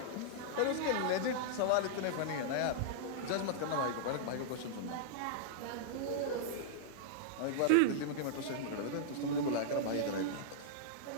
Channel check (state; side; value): different; both; correlation -0.02